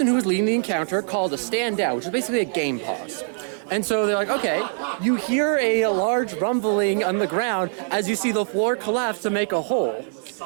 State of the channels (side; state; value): left; silent; digital silence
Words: who was leading the encounter called a standout, which is basically a game pause. And so they're like, okay, you hear a large rumbling on the ground as you see the floor collapse to make a hole.